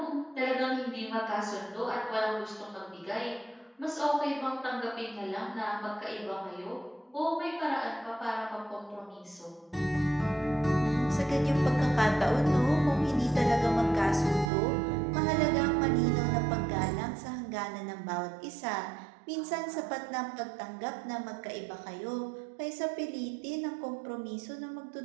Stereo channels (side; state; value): left; drops out; at 14.5 s